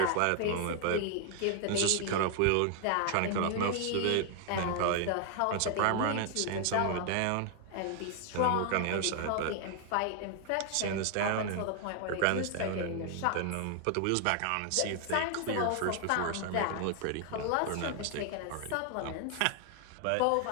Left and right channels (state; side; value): different; both; correlation 0.00